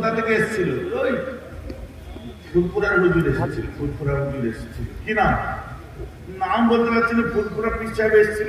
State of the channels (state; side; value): identical; both; correlation 1.00